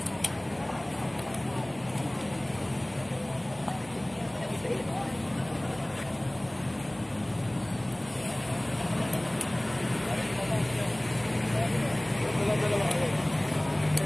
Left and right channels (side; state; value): right; noise; hum, 28 dB below the sound